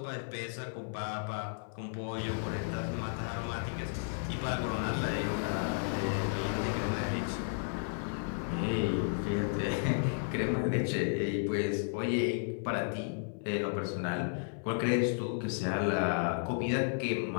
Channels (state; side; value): silent; right; 55 dB below the other